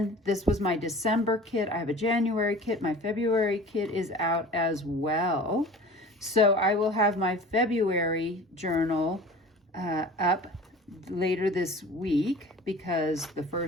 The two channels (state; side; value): normal; both; correlation 0.41